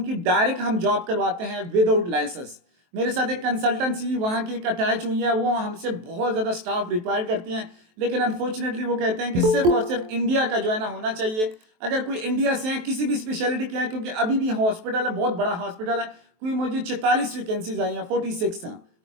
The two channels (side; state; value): left; late; 23 ms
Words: डायरेक्ट हम जॉब करवाते हैं विदाउट लाइसेंस। मेरे साथ एक कंसल्टेंसी वहाँ की एक अटैच हुई है, वो हमसे बहुत ज़्यादा स्टाफ रिक्वायर करती हैं, लेकिन अनफॉर्चुनेटली वो कहते हैं कि सिर्फ और सिर्फ इंडिया का जो है ना होना चाहिए। अगर कोई इंडिया से है, किसी भी स्पेशलिटी के हैं, क्योंकि अभी भी हॉस्पिटल है, बहुत बड़ा हॉस्पिटल है, कोई मुझे 44 वैकेंसीज आई हैं, 46 हैं,